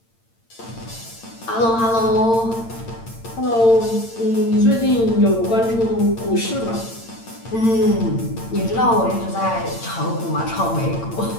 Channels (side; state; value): right; late; 8.8 ms